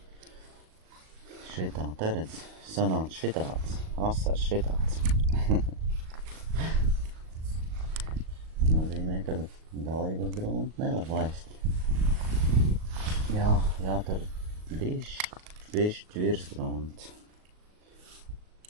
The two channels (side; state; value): left; late; 38 ms